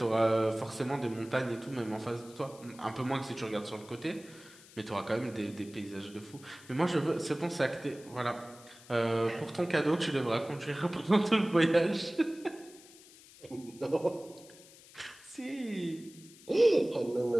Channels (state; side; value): noise; left; hiss, 22 dB below the sound